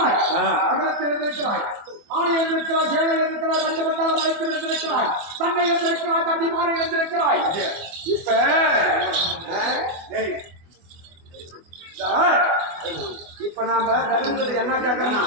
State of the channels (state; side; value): late; left; 24 ms